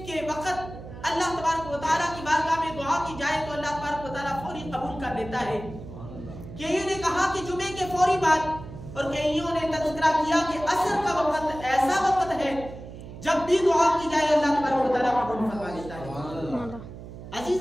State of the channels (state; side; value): noise; right; hum, 13 dB below the sound